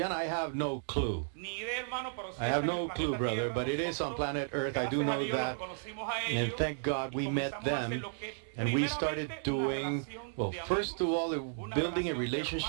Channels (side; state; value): left; silent; digital silence